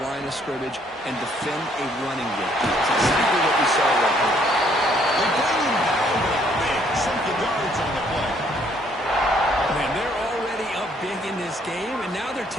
line of scrimmage and defend a running game. That's exactly what we saw right here. They bring him down with a big chunk of yards on the play. Man, they're already up big in this game, and now they're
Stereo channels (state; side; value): normal; both; correlation 0.66